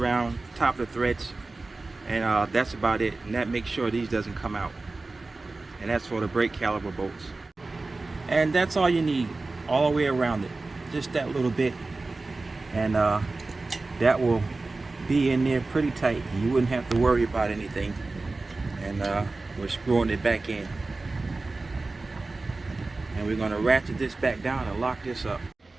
top of the threads, and that's about it. And that makes sure these doesn't come out. And that's for the brake caliper bolts. And that's all you need, all the way around it, just that little bit, and that will be in there pretty tight. You wouldn't have to worry about anything. And we're screwing it back in, and we're going to ratchet this back down and lock this up.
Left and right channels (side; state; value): left; quieter; 3.4 dB